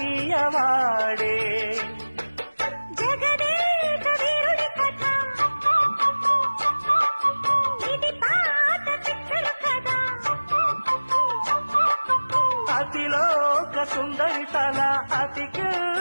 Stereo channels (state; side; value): inverted; both; correlation -1.00